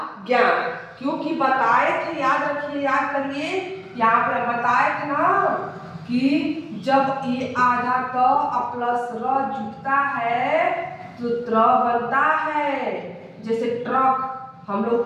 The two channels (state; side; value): identical; both; correlation 1.00